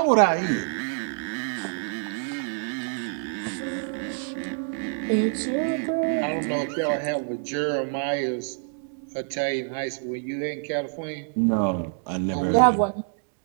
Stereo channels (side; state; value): left; silent; digital silence